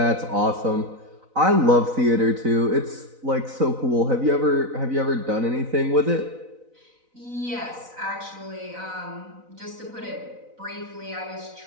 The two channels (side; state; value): left; late; 4.0 ms